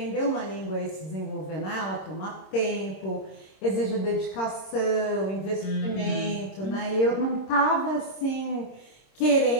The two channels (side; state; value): right; late; 26 ms